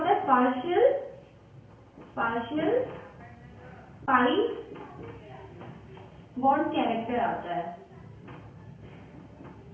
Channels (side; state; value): both; identical; correlation 1.00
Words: है, पार्शियल पाई बॉन्ड कैरेक्टर आता है।